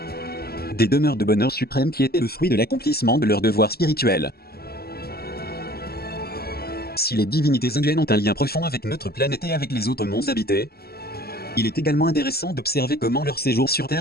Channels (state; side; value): late; right; 0.45 ms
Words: Des demeures de bonheur suprême qui étaient le fruit de l'accomplissement de leurs devoirs spirituels. Si les divinités indiennes ont un lien profond avec notre planète et avec les autres mondes habités, il est également intéressant d'observer comment leur séjour sur